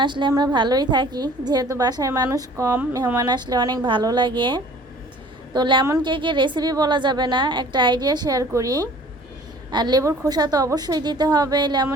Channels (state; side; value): normal; both; correlation 0.50